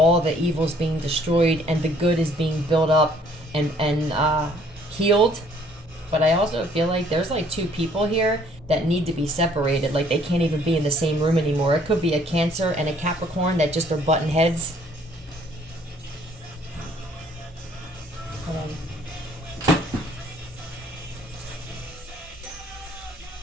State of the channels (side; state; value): both; normal; correlation 0.61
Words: the evil's being destroyed, and the good is being built up and healed. But I also feel like there's like two people here that need to be separated. Like they can't even be in the same room anymore. It could be a Cancer and a Capricorn that just are button heads. Hold on.